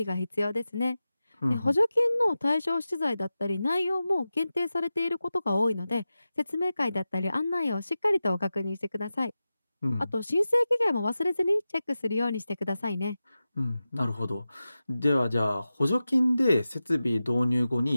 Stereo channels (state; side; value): inverted; both; correlation -0.94